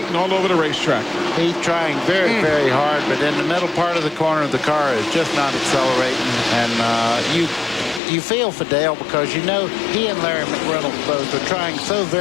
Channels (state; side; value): drops out; right; at 8.0 s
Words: all over the racetrack. He's trying very, very hard, but in the middle part of the corner, the car is just not accelerating. And you feel for Dale because you know he and Larry McReynolds both are trying so